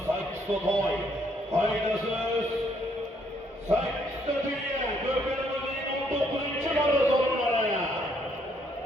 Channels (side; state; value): both; normal; correlation 0.69